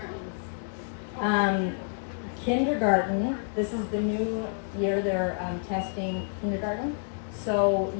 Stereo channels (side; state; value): right; silent; digital silence